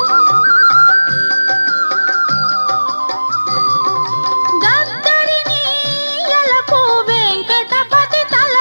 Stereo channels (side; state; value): both; inverted; correlation -1.00